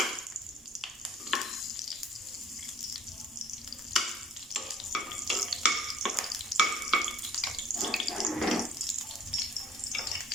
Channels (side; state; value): both; normal; correlation 0.55